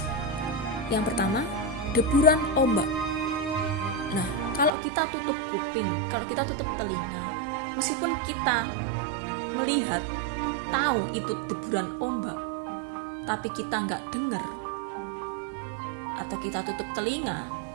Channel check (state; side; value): drops out; left; at 4.7 s